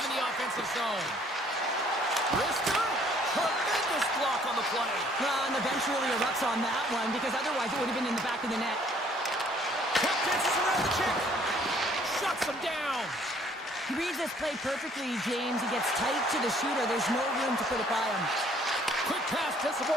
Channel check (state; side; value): normal; both; correlation 0.60